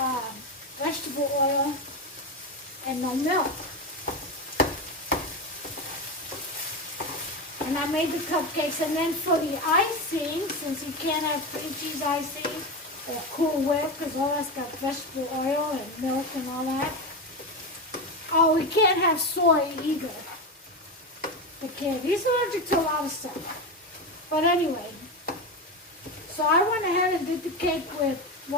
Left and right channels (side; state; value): both; normal; correlation 0.17